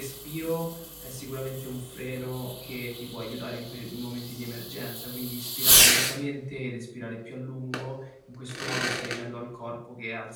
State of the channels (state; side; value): identical; both; correlation 1.00